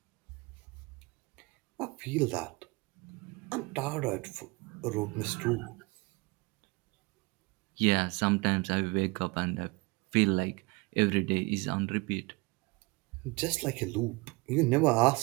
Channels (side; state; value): left; quieter; 25.7 dB